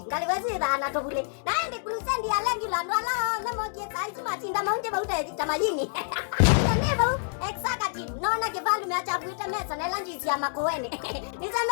ngalikwezia na tobule naende kulusendi alengila ndwala namoje saizi matinda maunje bauta tamayini neva executive nona kivalume acha kuita mesa na lanjisi ya makoene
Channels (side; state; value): right; silent; digital silence